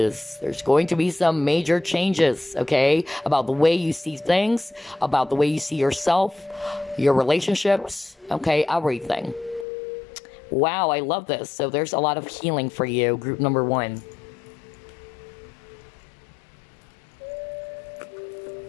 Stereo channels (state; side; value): drops out; right; at 9.7 s